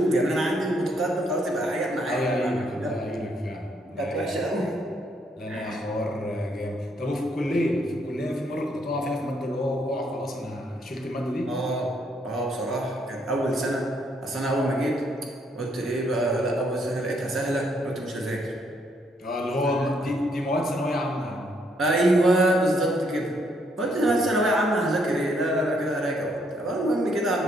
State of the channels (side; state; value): both; normal; correlation 0.72